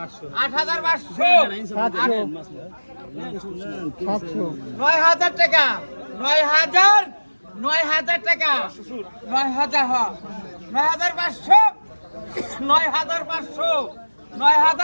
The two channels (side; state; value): both; inverted; correlation -1.00